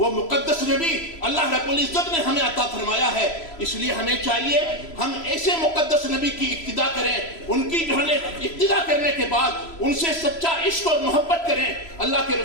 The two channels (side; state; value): right; late; 3.0 ms